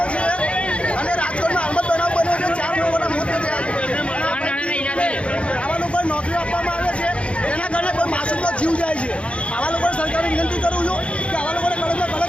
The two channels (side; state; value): right; late; 0.060 ms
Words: નોકરી આપવામાં આવે છે એના કારણે કોઈ માસૂમનો જીવ જાય છે. આવા લોકોને સરકારે વિનંતી કરું છું કે આવા લોકોને કડકમાં